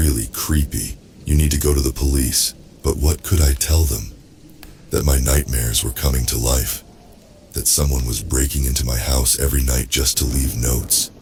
creepy. You need to go to the police." But what could I tell them? That my nightmares were coming to life. That someone was breaking into my house every night just to leave notes.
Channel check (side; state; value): both; identical; correlation 1.00